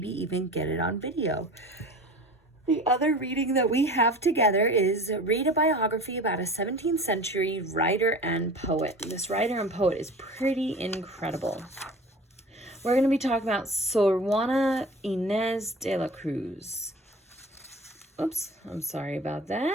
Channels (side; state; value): both; normal; correlation 0.39